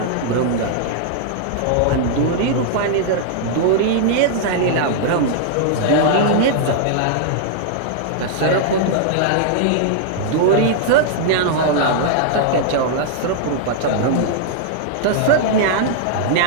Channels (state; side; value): different; both; correlation -0.01